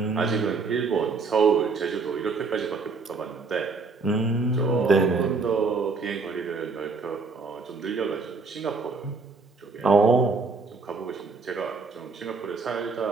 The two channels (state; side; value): quieter; left; 4.3 dB